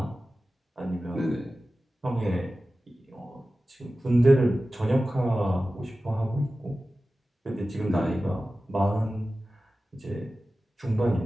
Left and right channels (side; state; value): both; normal; correlation 0.95